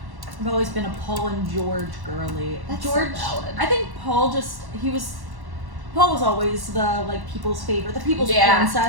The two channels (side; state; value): left; late; 1.1 ms